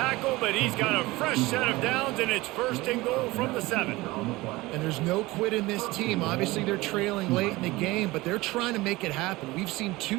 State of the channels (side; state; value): left; quieter; 20.4 dB